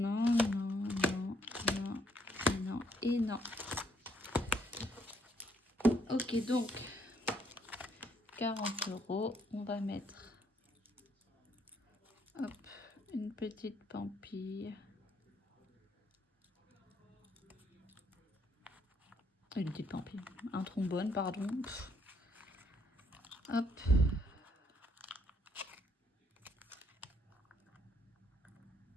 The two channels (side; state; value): both; normal; correlation 0.70